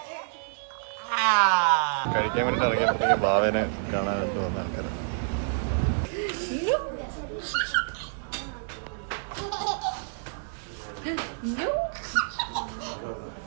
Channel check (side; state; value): left; silent; digital silence